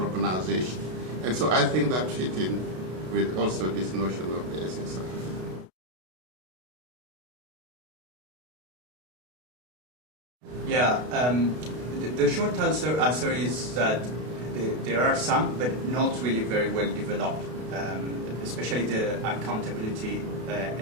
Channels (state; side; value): late; left; 32 ms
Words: And so I think that fit in with also this notion of the SSR. Yeah, the short answer is that there are some, but not really very well developed, especially the accountability